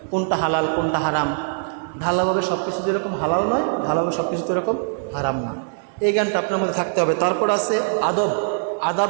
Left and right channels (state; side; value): silent; left; 64 dB below the other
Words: কোনটা হালাল কোনটা হারাম, ঢালাভাবে সব কিছু যেরকম হালাল নয়, ঢালাভাবে সব কিছু তো এরকম হারাম নয়, এই জ্ঞানটা আপনার মধ্যে থাকতে হবে। তারপর আছে আদব,